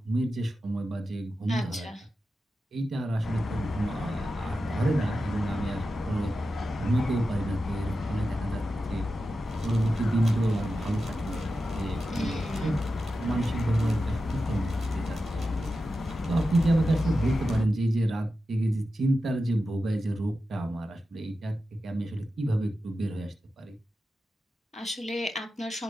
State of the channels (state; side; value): normal; both; correlation 0.91